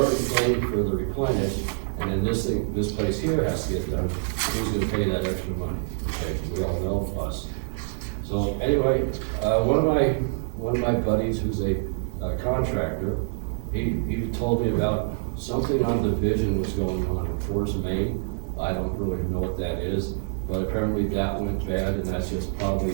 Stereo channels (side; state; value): left; silent; 55 dB below the other